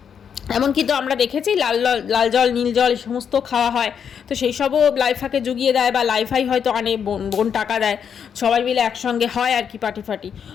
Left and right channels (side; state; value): right; quieter; 7.6 dB